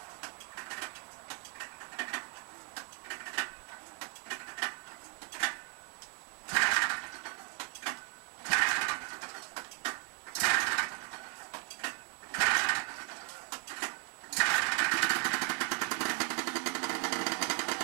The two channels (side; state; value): left; quieter; 38.1 dB